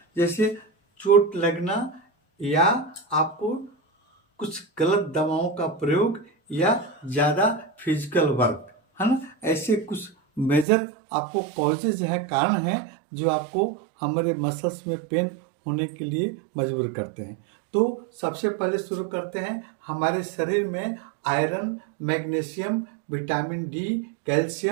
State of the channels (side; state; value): left; drops out; at 10.7 s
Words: जैसे चोट लगना या आपको कुछ गलत दवाओं का प्रयोग या ज़्यादा फिजिकल वर्क, है ना। ऐसे कुछ मेजर आपको कॉजेज हैं, कारण हैं जो आपको हमारे मसल्स में पेन होने के लिए मजबूर करते हैं। तो सबसे पहले शुरू करते हैं, हमारे शरीर में iron, magnesium, vitamin D,